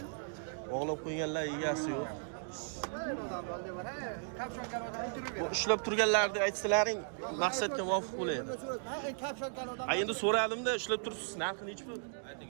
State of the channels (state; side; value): silent; left; digital silence